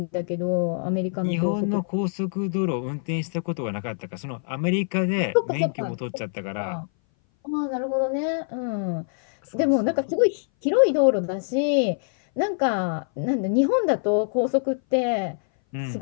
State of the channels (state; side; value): silent; right; 59 dB below the other